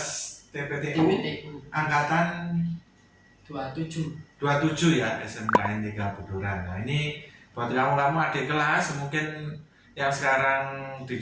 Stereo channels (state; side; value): identical; both; correlation 1.00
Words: TPTU TPTU angkatan 27. 27 ya, SMKN 3 Buduran. Nah, ini buat kamu adik kelas mungkin yang sekarang di